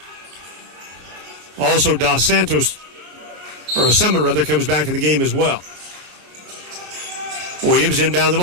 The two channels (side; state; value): left; late; 33 ms